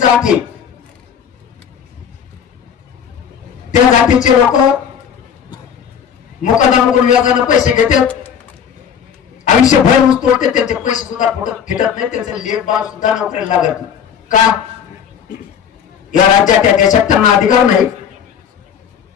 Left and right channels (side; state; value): right; quieter; 8.1 dB